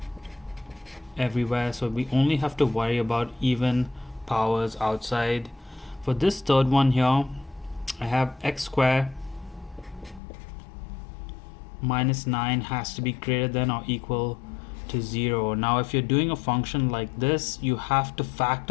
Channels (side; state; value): right; drops out; at 10.2 s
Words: everywhere. So we only have to worry about even powers outside. For this third one here, I have x squared minus 9 has to be greater than or equal to 0. Now if you're doing a function like this, you have to